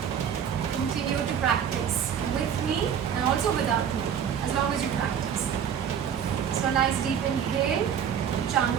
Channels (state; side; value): quieter; left; 8.3 dB